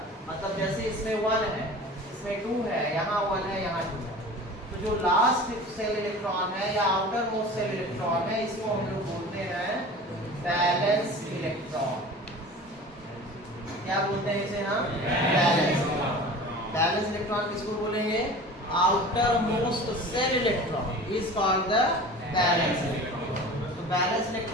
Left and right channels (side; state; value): both; normal; correlation 0.39